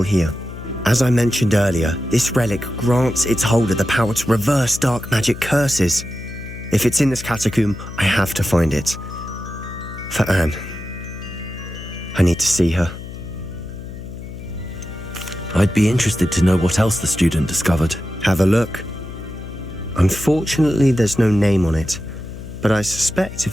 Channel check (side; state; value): left; noise; hum, 11 dB below the sound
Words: here. As I mentioned earlier, this relic grants its holder the power to reverse dark magic curses. If it's in this catacomb, I have to find it. For Anne. I need to see her. I'd be interested to know what else the student discovered. Have a look. Unfortunately, there's no name on it, but I suspect